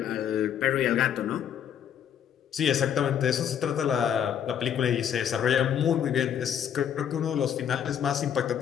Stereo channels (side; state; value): right; quieter; 9.0 dB